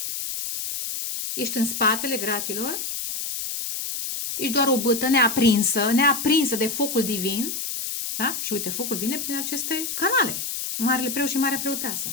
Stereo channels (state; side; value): noise; left; hiss, 4 dB below the sound